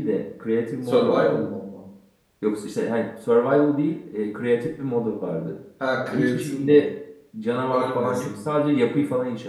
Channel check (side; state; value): both; identical; correlation 1.00